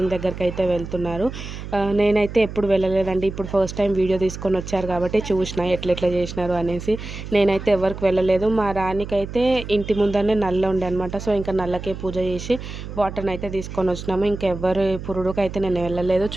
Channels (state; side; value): noise; right; hum, 10 dB below the sound